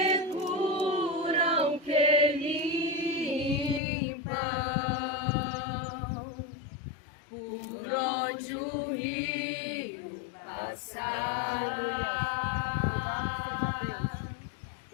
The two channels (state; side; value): drops out; right; at 3.8 s